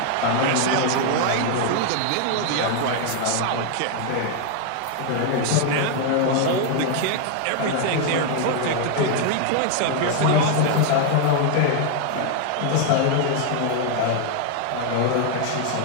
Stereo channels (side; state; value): both; different; correlation 0.00